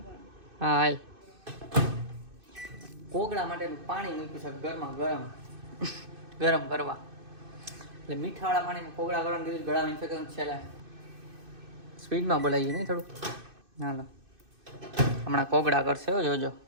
કરો. હા હાલ. કોગળા માટે પાણી મૂક્યું છે ઘરમાં ગરમ કરવા. એટલે મીઠાવાળા પાણીમાં કોગળા કરવાનું કીધું. ગળામાં ઇન્ફેક્શન છે. સ્પીડમાં બોલાવી નહીં થોડું. હાલો હમણાં કોગળા કરશે હો જોજો.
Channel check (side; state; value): left; late; 2.6 ms